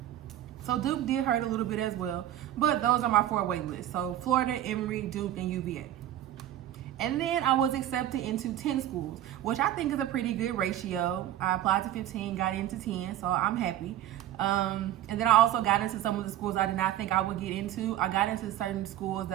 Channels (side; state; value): left; quieter; 12.6 dB